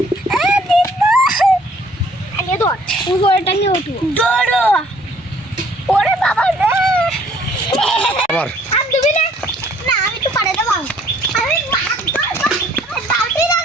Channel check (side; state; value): both; normal; correlation 0.59